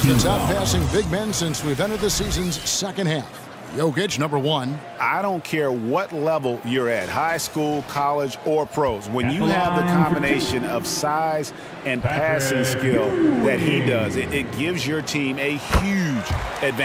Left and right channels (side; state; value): both; identical; correlation 1.00